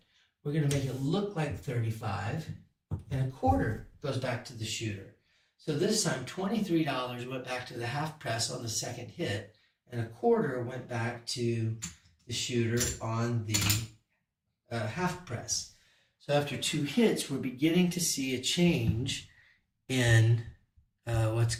We're going to make it look like 35, and a quarter goes back to the shooter. So this time, $23 went back to the half press on the second hit, and a quarter went back to the shooter on the half press. So after 2 hits, we're beginning to see a change in what's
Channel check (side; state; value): both; identical; correlation 1.00